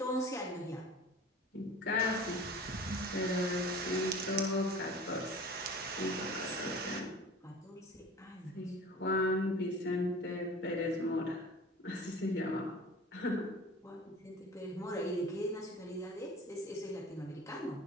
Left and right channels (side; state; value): both; normal; correlation 0.40